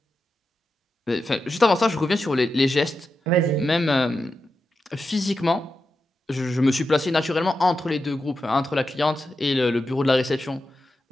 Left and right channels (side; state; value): both; normal; correlation 0.89